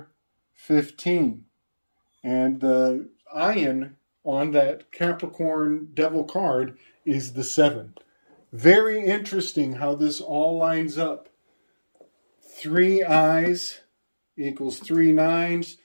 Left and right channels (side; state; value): both; inverted; correlation -1.00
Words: 15. And the Ayen on that Capricorn devil card is the 7. Very interesting how this all lines up. 3 eyes equals 3 nines.